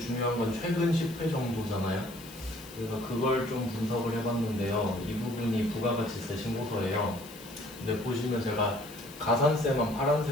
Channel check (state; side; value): noise; left; hiss, 18 dB below the sound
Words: 중요한 건 최근 10회 정도잖아요. 그래서 그걸 좀 분석을 해봤는데요. 이 부분이 부가가치세 신고서예요. 근데 보시면 제가 가산세만